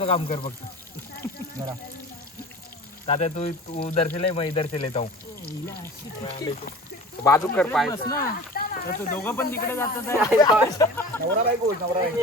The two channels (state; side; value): normal; both; correlation 0.38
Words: काम कर फक्त जरा तात्या तू दर्शले मी दर्शले जाऊ बाजू कर पाय ना तर दोघं पण तिकडे जातात नवरा बायको